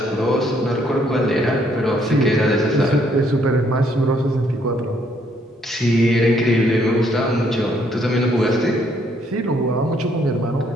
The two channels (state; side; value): normal; both; correlation 0.69